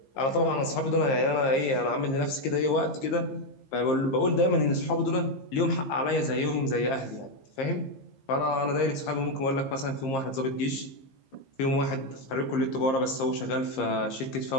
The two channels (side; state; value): right; late; 15 ms